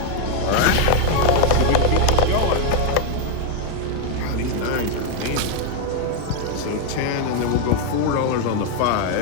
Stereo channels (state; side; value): different; both; correlation 0.01